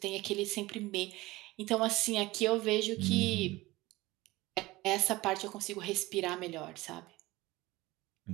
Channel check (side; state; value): left; quieter; 19.8 dB